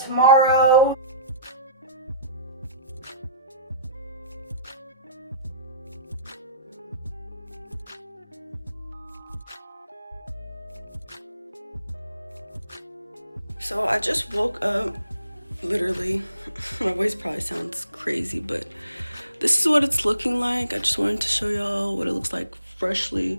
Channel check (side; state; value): both; inverted; correlation -0.57